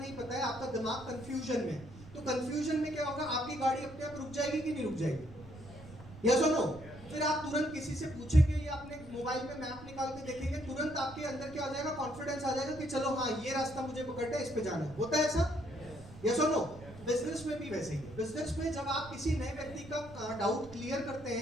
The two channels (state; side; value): noise; right; rumble, 17 dB below the sound